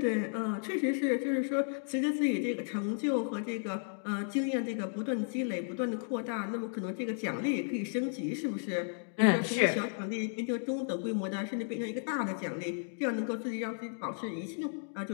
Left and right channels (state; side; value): silent; right; digital silence